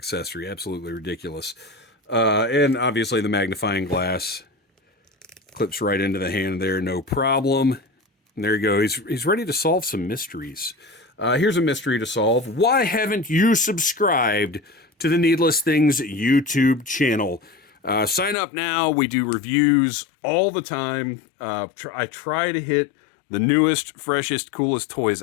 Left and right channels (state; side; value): drops out; right; at 18.4 s